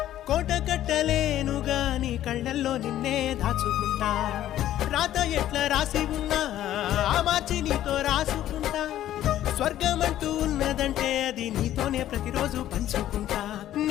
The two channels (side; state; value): right; quieter; 12.7 dB